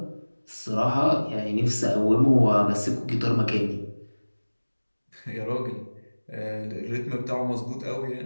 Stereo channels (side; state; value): both; inverted; correlation -1.00